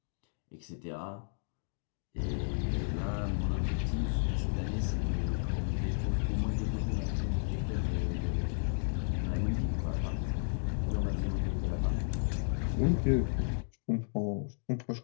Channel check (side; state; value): right; silent; digital silence